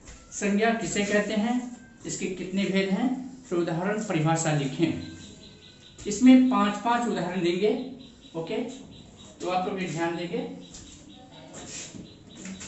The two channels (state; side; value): identical; both; correlation 1.00